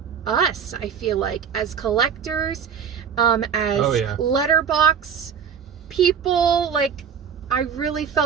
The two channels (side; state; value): left; quieter; 7.3 dB